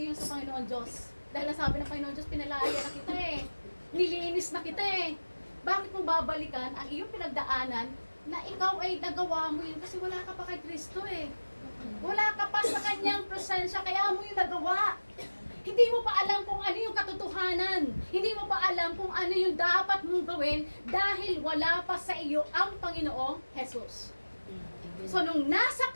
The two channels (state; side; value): inverted; both; correlation -1.00